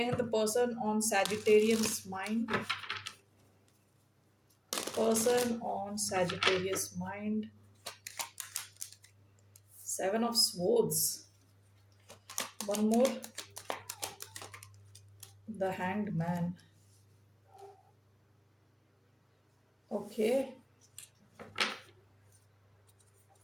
हैं the person on Sagittarius mind. Person on Sagittarius mind. Seven of swords, one more, the hanged man. Okay,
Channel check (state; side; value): identical; both; correlation 1.00